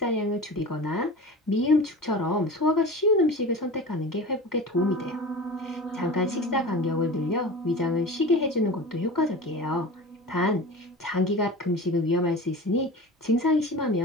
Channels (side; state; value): both; normal; correlation 0.34